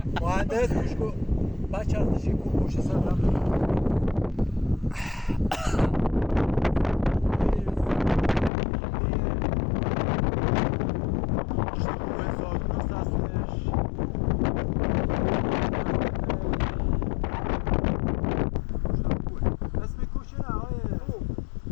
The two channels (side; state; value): right; drops out; at 8.5 s